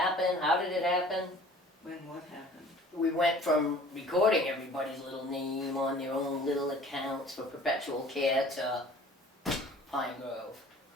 How did it happen? When what happened? We went from recording everybody's little name on their own little accounts for perpetual care to Pine Grove.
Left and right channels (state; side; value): normal; both; correlation 0.49